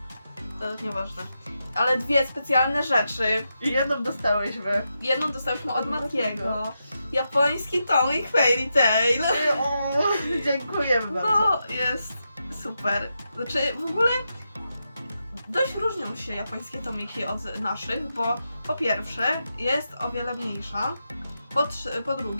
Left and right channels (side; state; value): both; inverted; correlation -0.86